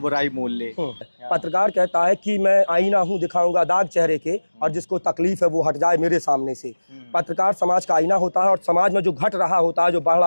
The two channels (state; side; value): inverted; both; correlation -1.00